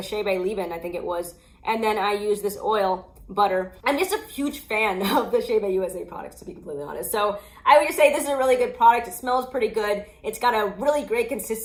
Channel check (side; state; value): both; identical; correlation 1.00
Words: Chebe leave-in, I think it was, and then I use this oil butter. I'm just a huge fan of the Chebe USA products, to be completely honest. So I would just say this is a really good product. It smells pretty good. It's got a really great